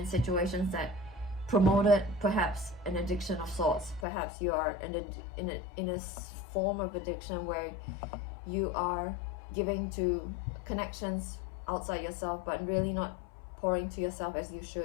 situations that promoted perhaps an addiction of sorts. Perhaps you are in a form of addiction where you are giving to connections outside yourself, but really not pouring to yourself as you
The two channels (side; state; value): right; drops out; at 4.0 s